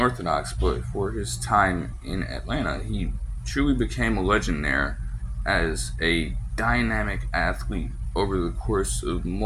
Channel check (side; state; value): both; identical; correlation 1.00